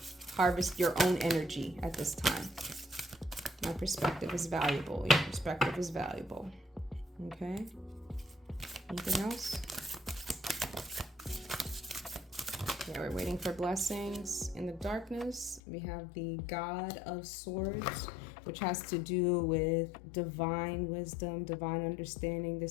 Harvest your own energy at this time. My perspective is valuable. Your perspective is valuable. Okay. Anything else? Yeah, we're waiting for blessings in the darkness. We have the God of Swords, which has to do with divine wisdom, divine understanding.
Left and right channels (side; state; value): right; drops out; at 15.6 s